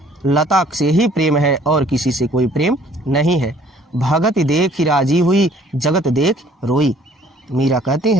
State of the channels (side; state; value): both; normal; correlation 0.58